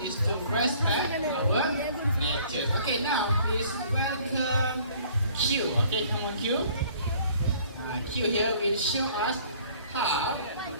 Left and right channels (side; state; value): both; inverted; correlation -0.55